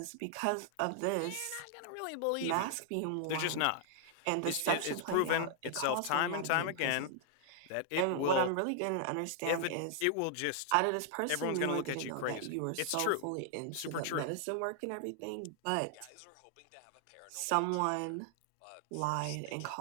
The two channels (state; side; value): different; both; correlation 0.00